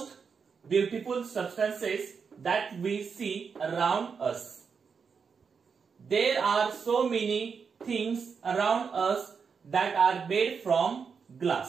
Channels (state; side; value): quieter; left; 5.9 dB